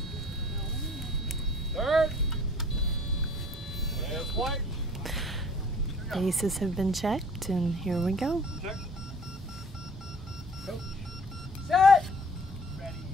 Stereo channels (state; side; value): normal; both; correlation 0.52